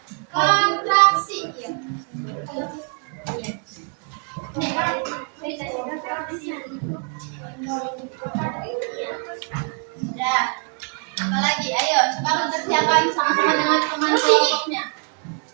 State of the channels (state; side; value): quieter; left; 39.0 dB